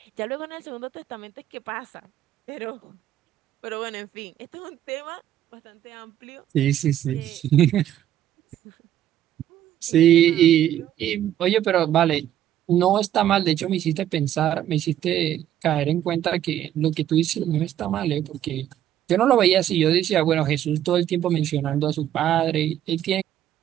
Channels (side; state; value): left; quieter; 11.6 dB